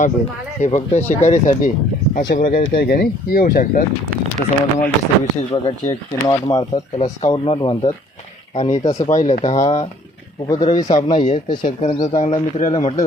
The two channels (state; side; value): normal; both; correlation 0.58